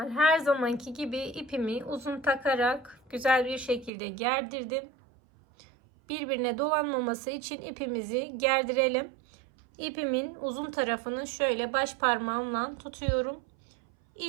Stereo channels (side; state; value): left; drops out; at 3.9 s